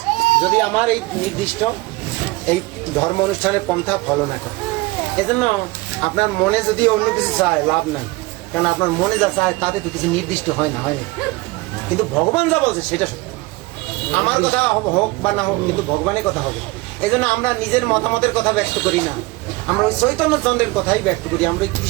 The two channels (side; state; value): left; quieter; 21.9 dB